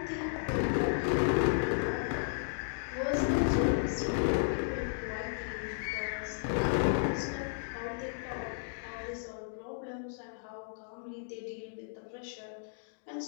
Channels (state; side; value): silent; right; digital silence